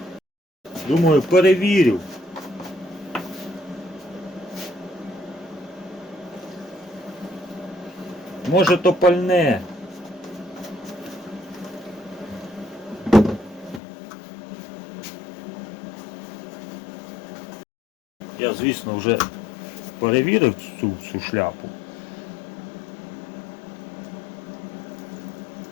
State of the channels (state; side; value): drops out; right; at 13.8 s